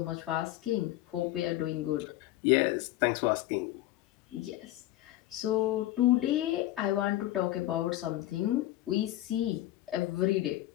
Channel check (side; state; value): right; quieter; 15.2 dB